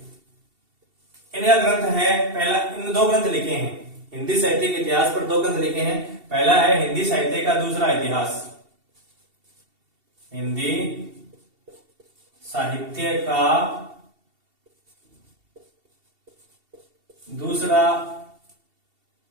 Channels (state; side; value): late; left; 2.7 ms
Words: इनका ग्रंथ है पहला, इन दो ग्रंथ लिखे हैं हिंदी साहित्य के इतिहास पर, दो ग्रंथ लिखे हैं। पहला है हिंदी साहित्य का दूसरा इतिहास, हिंदी साहित्य का दूसरा,